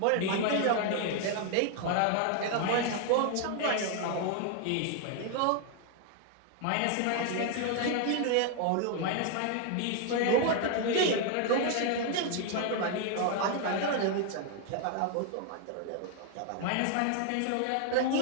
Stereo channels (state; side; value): different; both; correlation 0.00